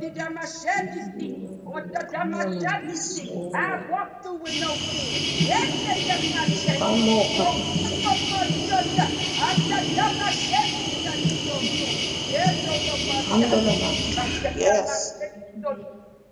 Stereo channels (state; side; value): identical; both; correlation 1.00